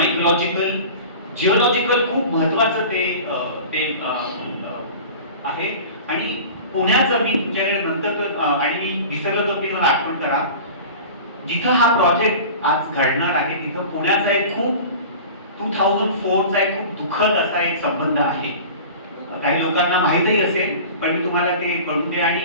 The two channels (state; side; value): inverted; both; correlation -0.37